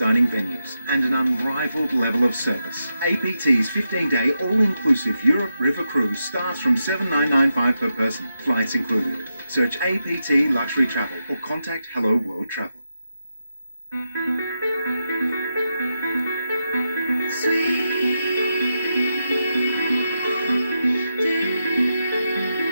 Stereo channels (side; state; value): both; inverted; correlation -0.86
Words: venues and an unrivaled level of service. APT's 15-day all-inclusive Europe River Cruise starts from $7,995 per person, flights included. Search APT Luxury Travel or contact Hello World Travel.